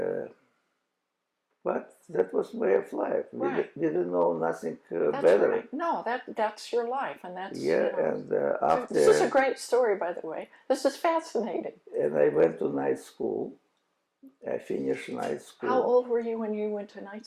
but that was way of life. Right. We didn't know nothing That's better. right. No, that's your life, and that's Yeah, you know, and after this is a great story, by the way. This is fascinating. and I went to night school. I finished night school. How old were you when you went to night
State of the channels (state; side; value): identical; both; correlation 1.00